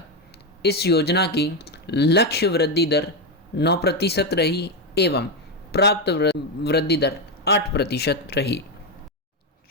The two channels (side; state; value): both; normal; correlation 0.08